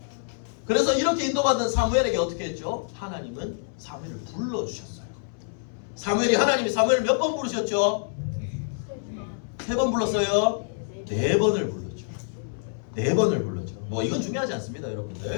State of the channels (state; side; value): silent; right; 60 dB below the other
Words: 그래서 이렇게 인도받는 사무엘에게 어떻게 했죠? 하나님은 사무엘을 불러주셨어요. 사무엘이 하나님이 사무엘을 몇 번 부르셨죠? 3번 불렀어요? 4번을 불렀죠. 4번을 불렀죠. 뭐 이건 중요하지 않습니다,